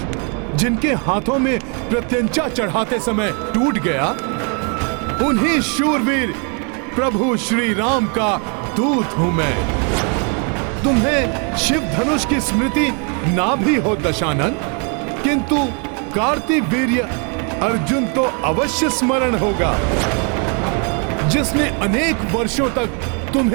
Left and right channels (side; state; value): left; quieter; 38.1 dB